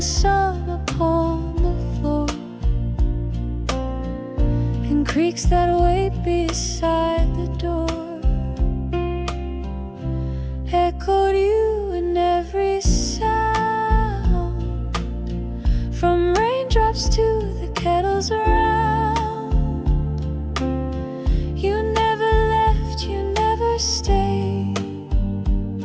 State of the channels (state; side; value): identical; both; correlation 1.00